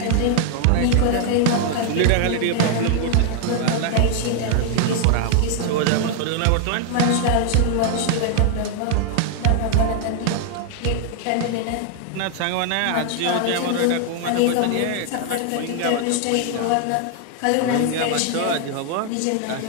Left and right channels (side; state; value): both; different; correlation 0.00